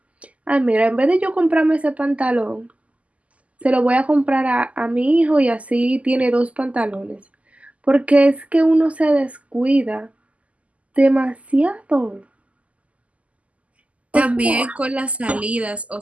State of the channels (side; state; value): left; late; 0.067 ms